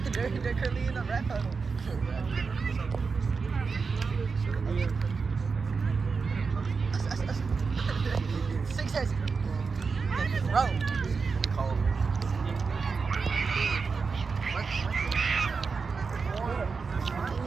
They're currently in the red huddle. Success. Bro.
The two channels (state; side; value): quieter; left; 4.9 dB